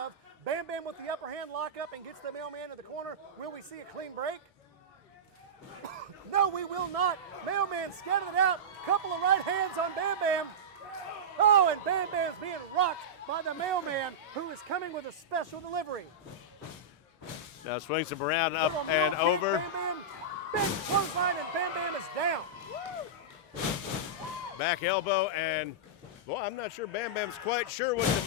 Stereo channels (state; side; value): normal; both; correlation -0.14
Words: Bam Bam with the upper hand lock up and gets the Mailman to the corner. Will we see a clean break? No, we will not. Mailman scattered it out. Couple of right hands on Bam Bam. Oh, and Bam Bam's being rocked by the Mailman, who is coming with a special delivery. Now swings him around, up Little and mule kick, over. Bam Bam, big clothesline, and Bam Bam is down. Back elbow, and well, I'm not sure Bam Bam's quite sure what to